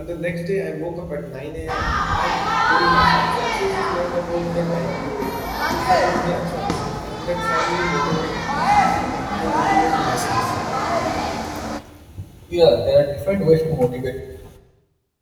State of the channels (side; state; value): both; identical; correlation 1.00